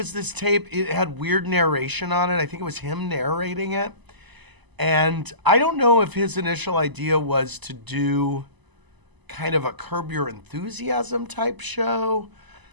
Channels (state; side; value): late; left; 1.0 ms